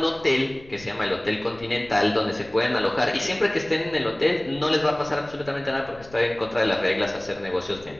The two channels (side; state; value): left; noise; rumble, 22 dB below the sound